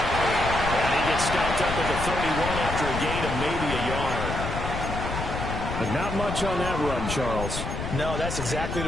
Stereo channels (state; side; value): noise; left; rumble, 5 dB below the sound